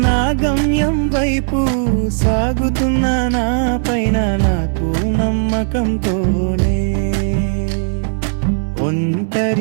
నా గమ్యం వైపు సాగుతున్న నా పైన నాకు నమ్మకంతోనే,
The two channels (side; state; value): left; silent; digital silence